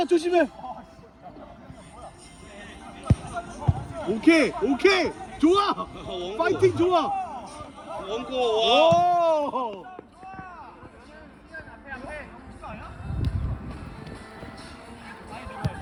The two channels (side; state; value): both; identical; correlation 1.00